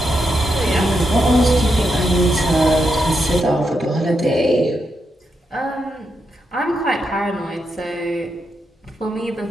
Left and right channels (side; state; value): both; normal; correlation 0.83